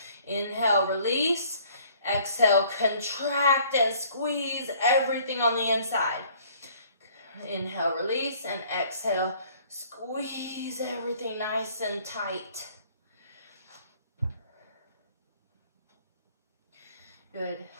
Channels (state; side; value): inverted; both; correlation -0.57